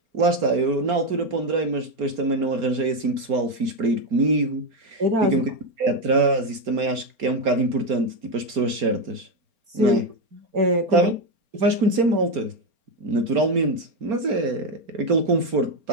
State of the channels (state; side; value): late; left; 4.3 ms